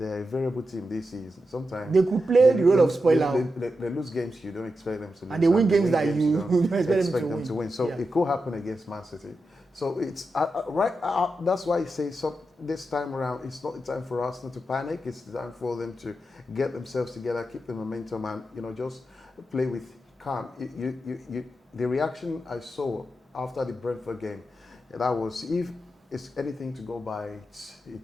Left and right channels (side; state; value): both; normal; correlation 0.88